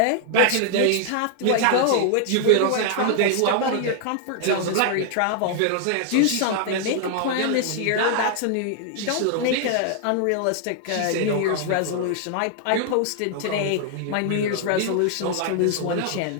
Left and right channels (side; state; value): both; different; correlation 0.00